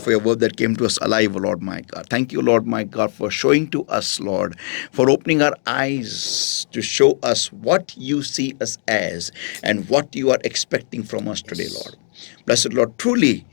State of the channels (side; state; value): right; silent; 66 dB below the other